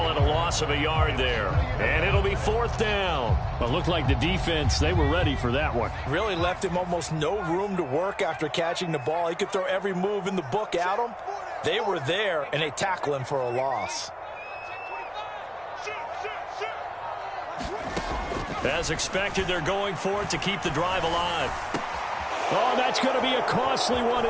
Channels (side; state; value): both; identical; correlation 1.00